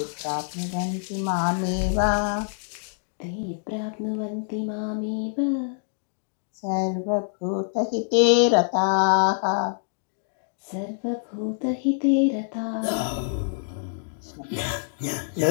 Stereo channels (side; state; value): right; silent; digital silence